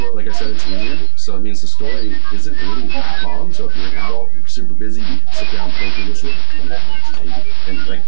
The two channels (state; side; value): different; both; correlation 0.00